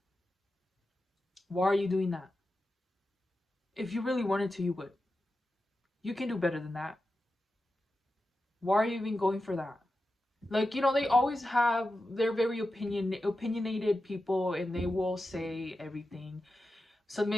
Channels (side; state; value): both; normal; correlation 0.91